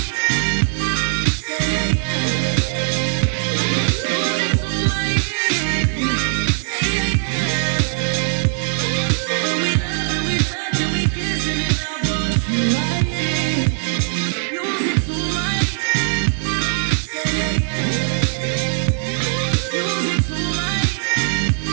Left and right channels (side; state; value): left; silent; digital silence